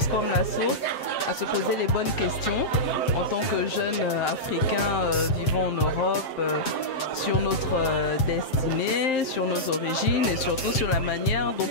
comme La Source, à se poser les bonnes questions en tant que jeunes Africains vivant en Europe, sur notre destinée, sur nos origines et surtout sur la manière dont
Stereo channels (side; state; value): right; late; 7.6 ms